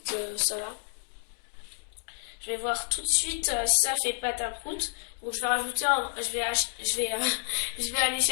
ça va. Je vais voir tout de suite si ça fait pâte à prout. Donc je vais rajouter je vais aller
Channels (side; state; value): right; silent; digital silence